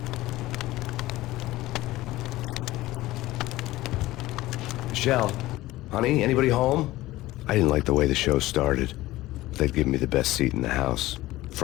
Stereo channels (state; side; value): quieter; right; 17.3 dB